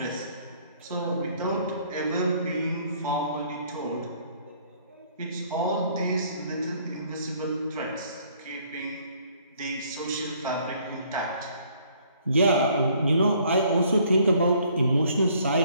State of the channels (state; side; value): inverted; both; correlation -0.62